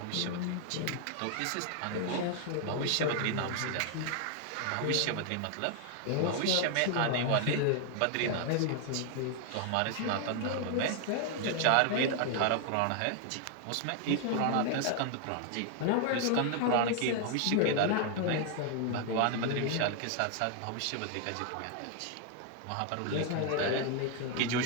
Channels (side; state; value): both; different; correlation 0.00